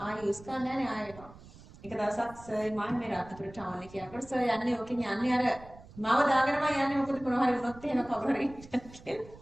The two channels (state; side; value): noise; right; rumble, 20 dB below the sound